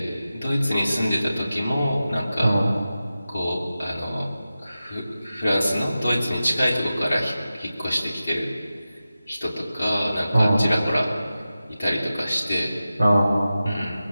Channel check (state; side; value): inverted; both; correlation -0.94